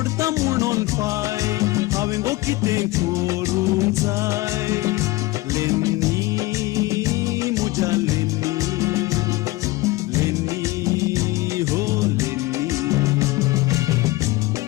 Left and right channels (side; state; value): right; quieter; 20.1 dB